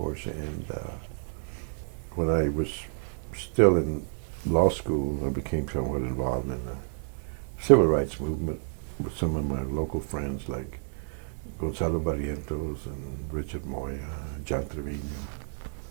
And when I was still in law school, I became somewhat involved in the civil rights movement with some of my local friends like Gonzalo Barrientos and Richard Moya, John Trevino,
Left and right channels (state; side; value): silent; left; 58 dB below the other